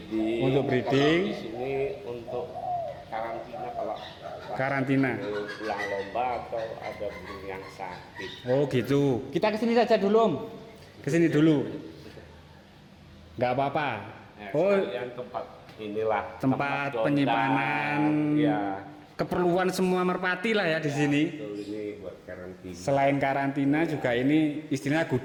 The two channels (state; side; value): identical; both; correlation 1.00